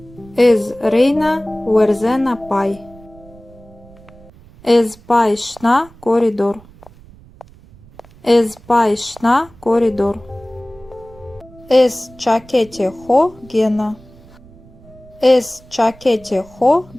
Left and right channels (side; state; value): right; noise; rumble, 24 dB below the sound